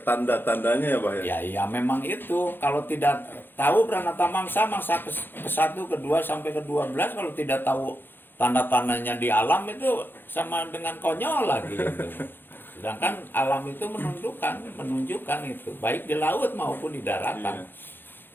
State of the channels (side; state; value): right; late; 0.098 ms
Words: tanda-tandanya ya, Pak, ya? Ya memang itu. Kalau tidak tahu Pranata Mangsa ke-1, ke-2 sampai ke-12, kalau tidak tahu tanda-tandanya di alam itu sama dengan konyol lagi gitu. Sedangkan alam itu menunjukkan itu, baik di laut maupun di daratan. Iya.